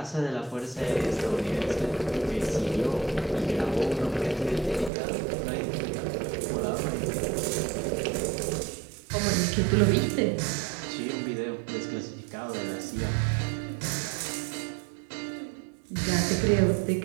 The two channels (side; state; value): left; drops out; at 4.9 s